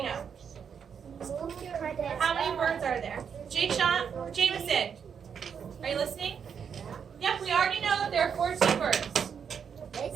know? How many birds are there? Jameson, are you listening? Yep, we already know that there are 14 birds.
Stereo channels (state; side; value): quieter; left; 7.1 dB